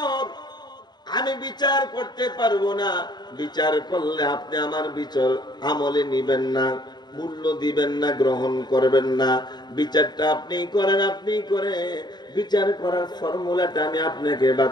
আমি বিচার করতে পারবো না, বিচার করলে আপনি আমার বিচার আমলে নিবেন না, মূল্য দিবেন না, গ্রহণ করবেন না। বিচারটা আপনি করেন, আপনি করে বিচার করার ফর্মুলাটা আমি আপনাকে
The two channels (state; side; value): late; right; 0.21 ms